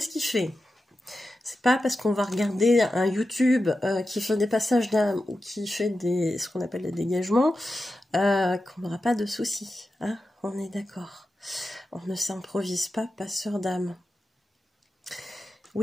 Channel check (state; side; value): normal; both; correlation 0.91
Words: ce qu'il fait. C'est pas parce qu'on va regarder un YouTube qui fait des passages d'âme ou qui fait ce qu'on appelle des dégagements qu'on n'aura pas de soucis. Hein, on est d'accord. On ne s'improvise pas passeur d'âme.